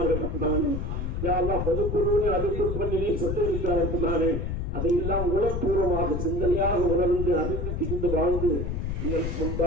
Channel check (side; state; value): left; noise; rumble, 2 dB below the sound